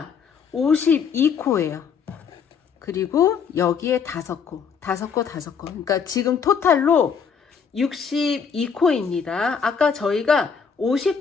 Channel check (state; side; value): quieter; right; 6.4 dB